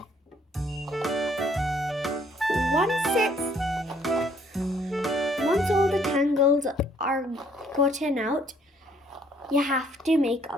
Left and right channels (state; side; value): normal; both; correlation 0.64